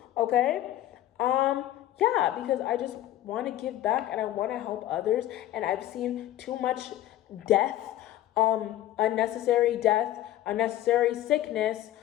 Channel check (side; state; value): right; quieter; 13.6 dB